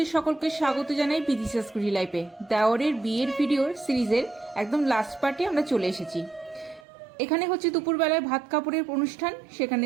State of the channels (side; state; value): left; drops out; at 6.8 s